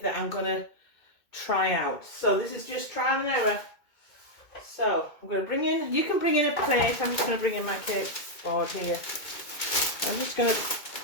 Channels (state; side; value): late; right; 2.2 ms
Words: that I'm going to try out. So this is just trial and error. So I'm going to bring in, you can bring in a plate. I'm just going to bring in my cake board here. I'm just going to